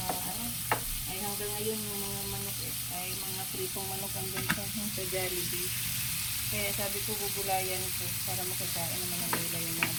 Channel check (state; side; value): identical; both; correlation 1.00